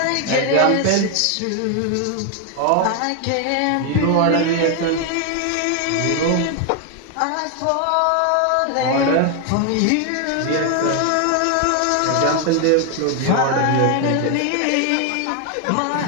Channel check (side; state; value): both; different; correlation 0.00